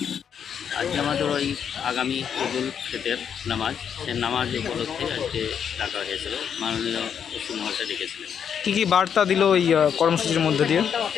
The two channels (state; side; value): quieter; right; 7.9 dB